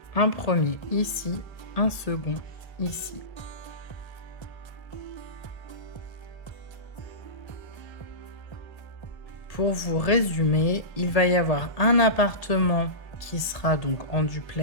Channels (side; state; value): right; late; 1.8 ms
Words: Un premier ici, un second ici. Pour vous résumer, il va y avoir un appartement qui sera donc en